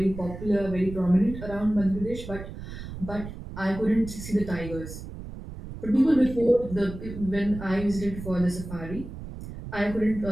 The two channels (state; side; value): noise; right; rumble, 11 dB below the sound